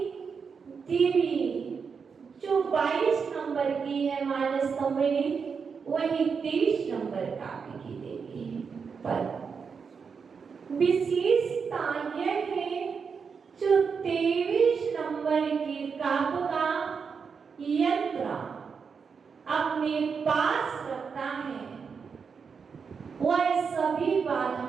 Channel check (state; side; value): quieter; left; 5.8 dB